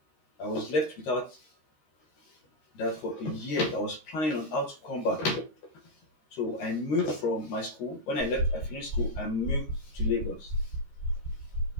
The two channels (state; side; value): late; right; 13 ms